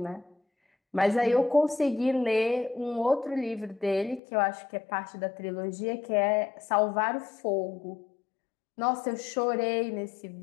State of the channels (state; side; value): drops out; right; at 4.2 s